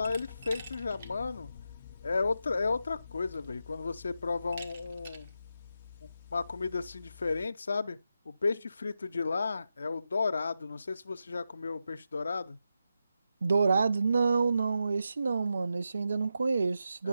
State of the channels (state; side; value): inverted; both; correlation -0.87